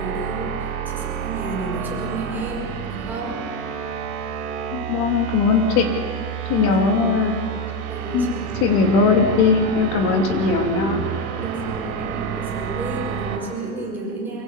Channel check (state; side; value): normal; both; correlation 0.11